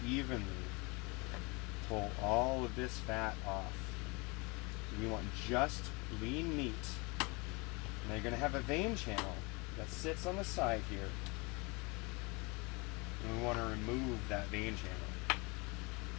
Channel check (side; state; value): right; quieter; 27.6 dB